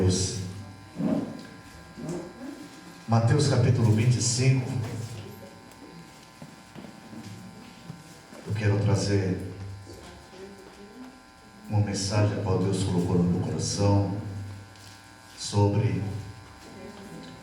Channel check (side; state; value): both; identical; correlation 1.00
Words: Mateus capítulo 25. Eu quero trazer uma mensagem que Deus colocou no meu coração sobre